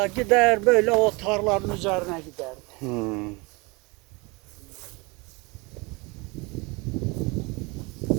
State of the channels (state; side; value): quieter; left; 26.8 dB